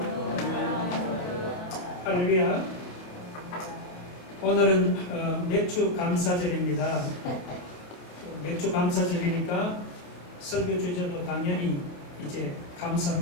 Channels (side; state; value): right; late; 27 ms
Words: 할렐루야. 오늘은 맥주 감사절입니다. 맥주 감사절이니까 설교 주제도 당연히 이제